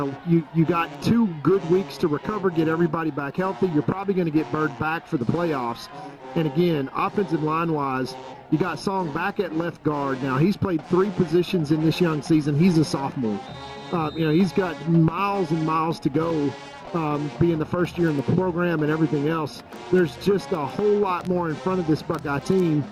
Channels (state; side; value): identical; both; correlation 1.00